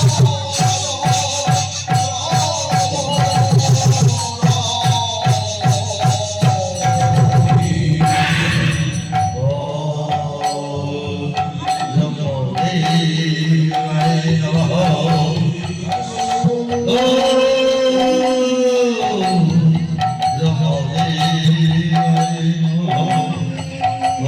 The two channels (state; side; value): identical; both; correlation 1.00